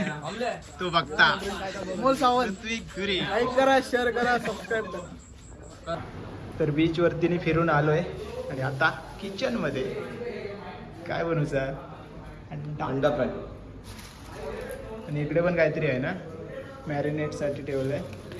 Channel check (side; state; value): both; identical; correlation 1.00